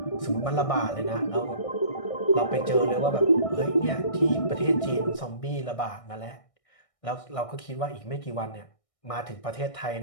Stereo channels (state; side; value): late; right; 1.6 ms